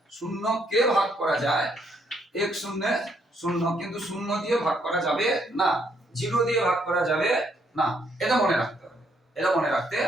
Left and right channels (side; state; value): both; normal; correlation 0.72